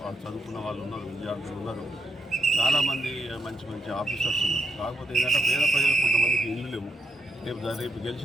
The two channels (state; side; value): normal; both; correlation 0.80